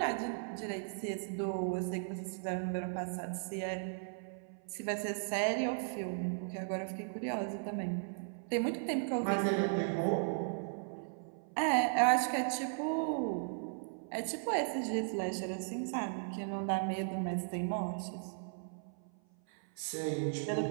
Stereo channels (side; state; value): left; silent; 53 dB below the other